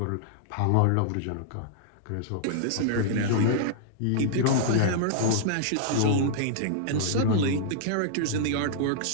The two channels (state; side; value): different; both; correlation -0.01